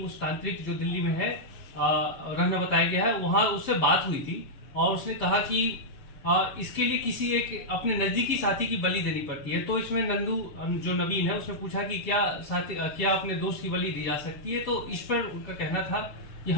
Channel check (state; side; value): late; right; 7.0 ms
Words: तांत्रिक जो दिल्ली में है रहना बताया गया है, वहां उससे बात हुई थी और उसने कहा कि इसके लिए किसी एक अपने नजदीकी साथी की बलि देनी पड़ती है। तो इसमें नंदू जो नवीन है उसने पूछा कि क्या अपने दोस्त की बलि दी जा सकती है, तो इस पर उनका कहना था